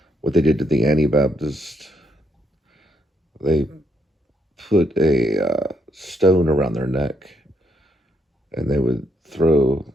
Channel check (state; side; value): normal; both; correlation 0.75